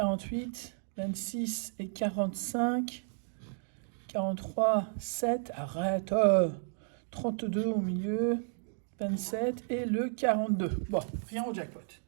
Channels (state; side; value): silent; left; digital silence